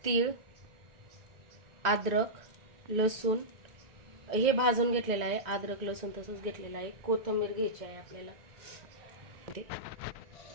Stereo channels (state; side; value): late; left; 2.0 ms